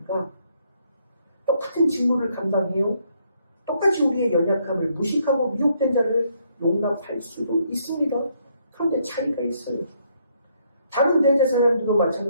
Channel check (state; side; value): inverted; both; correlation -0.71